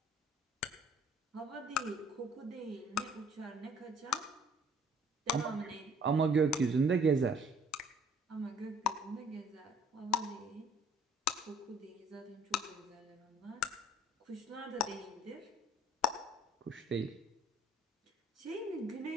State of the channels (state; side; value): normal; both; correlation 0.56